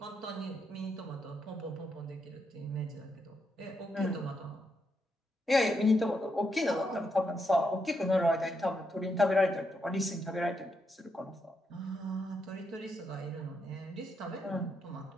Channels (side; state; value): both; normal; correlation 0.81